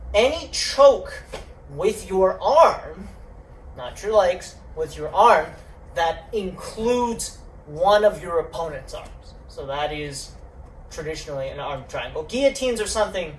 any choke with your arm, not your legs, with your arm, that includes one of your opponent's arms. So that is traditionally an arm triangle. Guillotines are something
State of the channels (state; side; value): identical; both; correlation 1.00